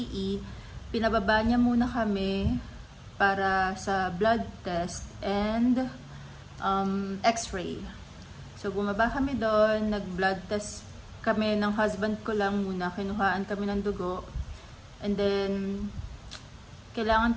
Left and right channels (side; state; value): both; identical; correlation 1.00